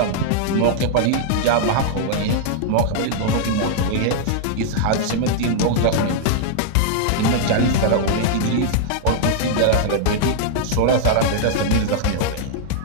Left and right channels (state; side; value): different; both; correlation -0.01